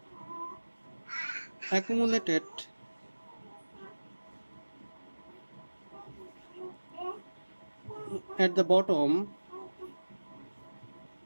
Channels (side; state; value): both; inverted; correlation -1.00